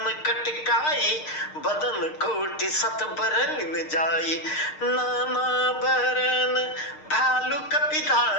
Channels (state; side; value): late; right; 6.5 ms